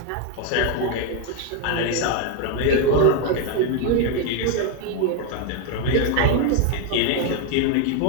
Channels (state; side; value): different; both; correlation 0.01